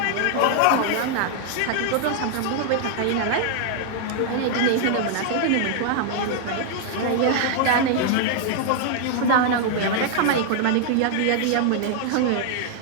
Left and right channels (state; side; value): different; both; correlation 0.00